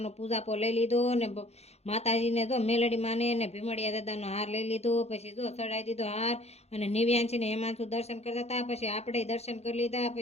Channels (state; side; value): late; right; 0.31 ms